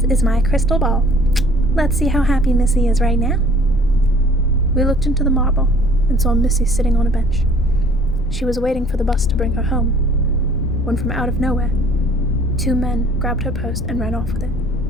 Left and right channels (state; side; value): noise; left; rumble, 9 dB below the sound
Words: is my crystal ball. Let's see how happy Missy is right now. We looked into the marble and saw Missy sitting on a bench. She was waiting for the bus to bring her home, when from out of nowhere, 2 men grabbed her purse and ran off with it.